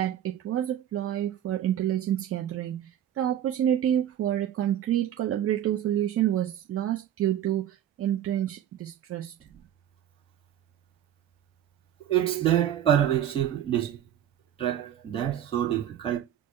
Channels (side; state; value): left; quieter; 11.0 dB